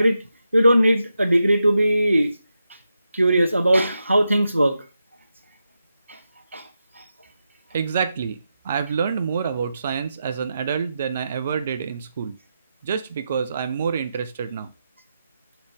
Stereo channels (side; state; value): both; inverted; correlation -0.88